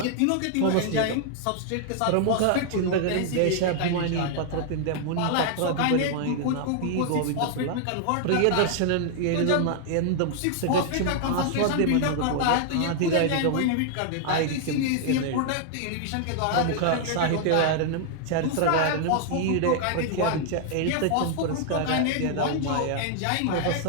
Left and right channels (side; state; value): both; different; correlation 0.00